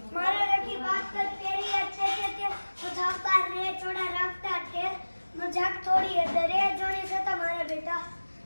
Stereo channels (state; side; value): inverted; both; correlation -1.00